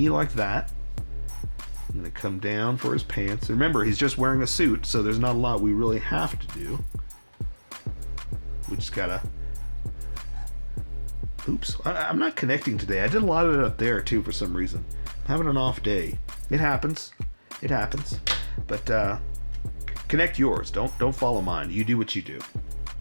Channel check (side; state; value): both; inverted; correlation -1.00